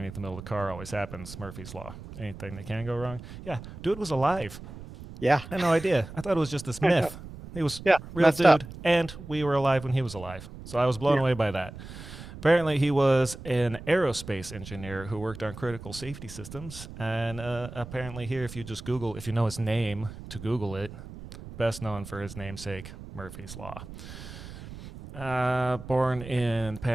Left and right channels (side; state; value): right; noise; rumble, 13 dB below the sound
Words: the middle of the car. Always happens. Murphy's Law. Anything that can go wrong. Yeah, dude was alive. Yeah. I had no idea. I thought it was just this myth. He was real dude, up. and we were alive when he was alive. So I was blown away by that. Apparently, he was an aerospace engineer who worked on critical safety systems. And apparently here, if you just Google, if you know his name to Google it, best known for his namesake, Murphy's Law. Born in